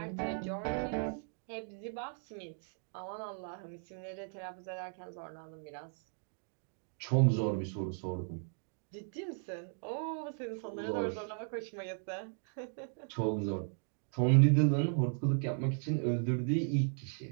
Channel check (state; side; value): silent; left; 53 dB below the other